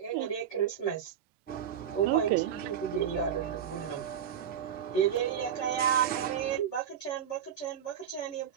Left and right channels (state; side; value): quieter; left; 8.9 dB